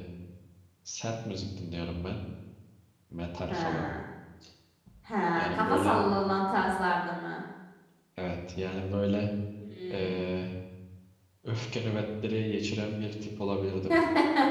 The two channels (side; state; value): both; identical; correlation 1.00